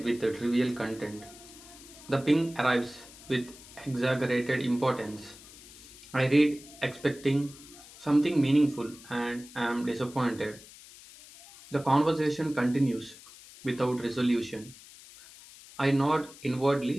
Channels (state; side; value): noise; left; hiss, 19 dB below the sound